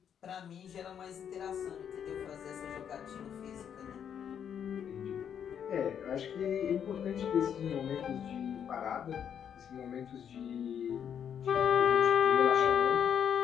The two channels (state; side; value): quieter; right; 8.5 dB